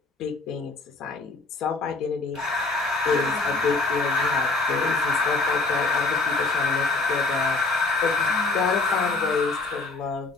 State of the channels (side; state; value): right; quieter; 3.6 dB